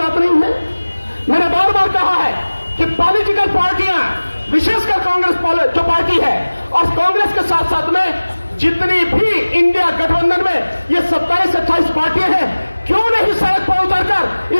नहीं है। मैंने बार बार कहा है कि पॉलिटिकल पार्टियां, विशेषकर कांग्रेस जो पार्टी है, और कांग्रेस के साथ साथ में जितनी भी इंडिया गठबंधन में ये 27-28 पार्टियां हैं, क्यों नहीं सड़क पर उतरकर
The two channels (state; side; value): inverted; both; correlation -1.00